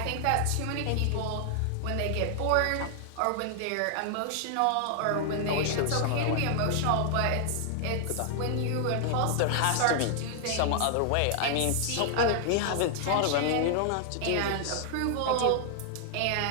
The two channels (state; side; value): different; both; correlation 0.00